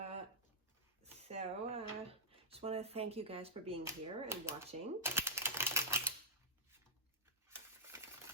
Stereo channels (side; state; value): both; normal; correlation -0.10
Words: Just want to thank you guys for being here and watching.